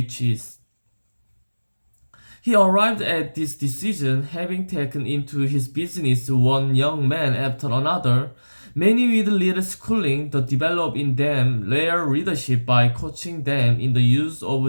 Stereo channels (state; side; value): inverted; both; correlation -1.00